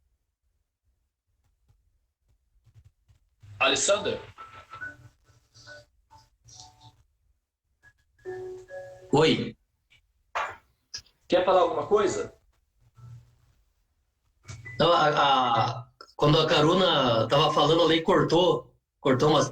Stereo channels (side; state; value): both; identical; correlation 1.00